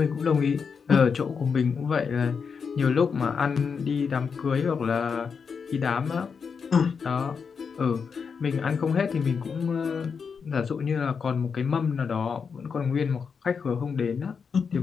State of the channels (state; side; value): quieter; right; 5.9 dB